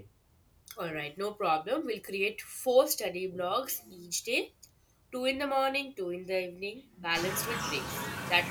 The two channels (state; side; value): identical; both; correlation 1.00